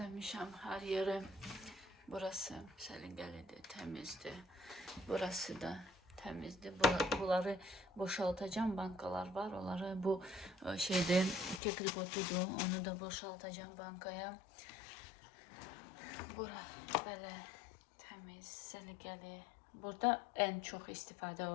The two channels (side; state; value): right; drops out; at 11.6 s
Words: hər yeri. Burası səliqəlidir, təmizdir. Burası da təmizdir. Bunları boşaltacağım. Bankalar var. Onları bu kekripotudur. Onu da boşaltacağım bankaya. Bura belə təmiz, səliqəli. Burada ən çox istifadə